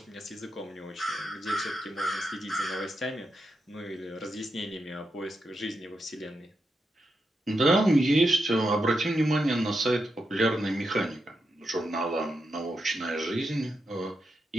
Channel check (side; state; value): both; normal; correlation 0.86